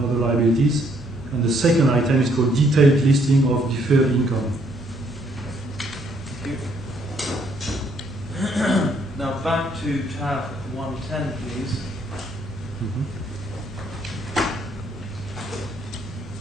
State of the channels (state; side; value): normal; both; correlation 0.68